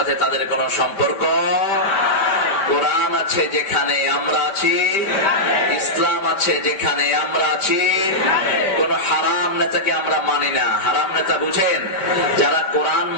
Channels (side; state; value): right; late; 5.0 ms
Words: তাদের কোনো সম্পর্ক। কোরআন আছে যেখানে আমরা আছি, ইসলাম আছে যেখানে আমরা আছি, কোন হারাম নেতাকে আমরা মানি না। হারাম নেতা বুঝেন? যারা কোরআন